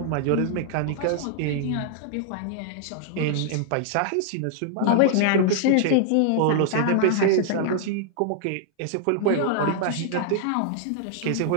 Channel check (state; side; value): different; both; correlation 0.00